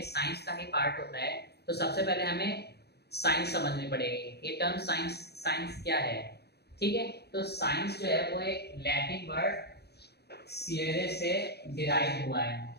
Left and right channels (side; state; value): right; late; 0.48 ms